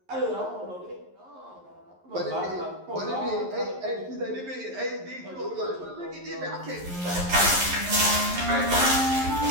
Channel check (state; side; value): late; left; 11 ms